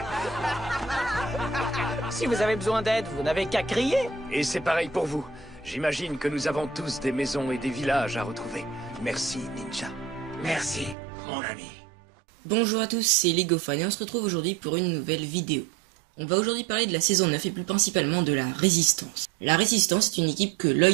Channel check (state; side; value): drops out; left; at 11.0 s